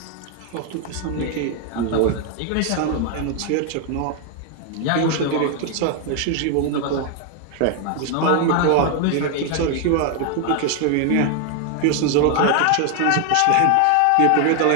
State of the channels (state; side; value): different; both; correlation 0.00